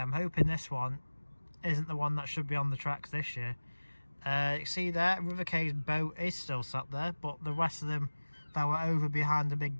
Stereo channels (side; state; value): both; inverted; correlation -1.00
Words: I'm hoping this one isn't the one that should be on the tracks this year. You see there, River Cay's boat is still sat there, but the rest of them that were over behind the